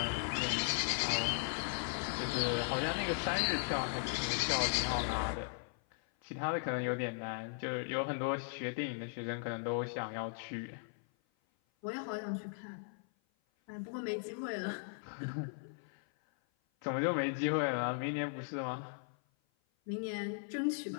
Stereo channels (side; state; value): right; silent; 53 dB below the other